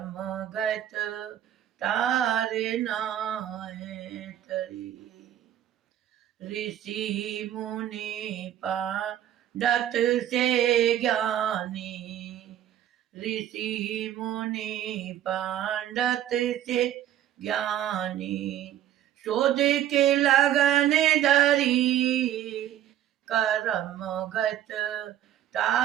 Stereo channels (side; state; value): left; quieter; 11.7 dB